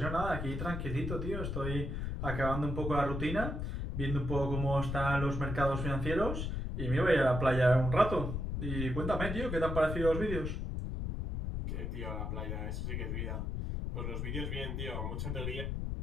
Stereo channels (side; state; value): left; noise; rumble, 3 dB below the sound